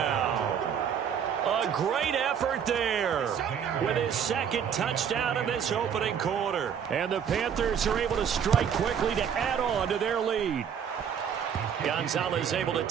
A great effort there with his 2nd touchdown in this opening quarter. And the Panthers are able to strike quickly to add on to their lead. Gonzalez able to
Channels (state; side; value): quieter; left; 7.9 dB